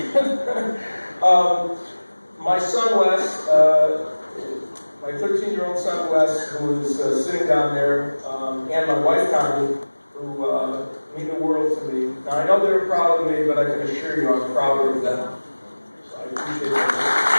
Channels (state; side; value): inverted; both; correlation -1.00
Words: good. My son Wes, my 13-year-old son Wes, who is sitting down there, and my wife Connie, who mean the world to me. Now I know they're proud of me, but I can assure you I'm prouder of them. So I appreciate that.